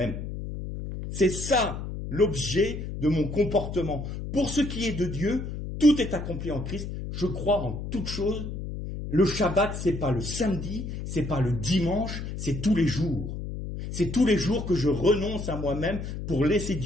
C'est ça l'objet de mon comportement. Pour ce qui est de Dieu, tout est accompli en Christ. Je crois en toute chose. Le Shabbat, c'est pas le samedi, c'est pas le dimanche, c'est tous les jours. C'est tous les jours que je renonce à moi-même pour laisser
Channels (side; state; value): left; noise; hum, 7 dB below the sound